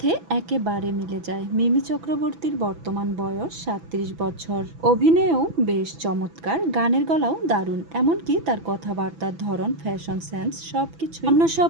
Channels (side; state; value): left; late; 6.0 ms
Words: একেবারে মিলে যায়। মিমি চক্রবর্তীর বর্তমান বয়স 37 বছর। অভিনয়েও বেশ চমৎকার, গানের গলাও দারুণ, এমনকি তার কথাবার্তার ধরন, ফ্যাশন সেন্স সবকিছু অন্য সব